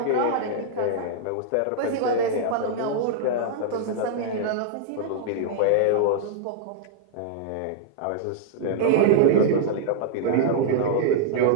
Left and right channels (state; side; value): different; both; correlation -0.01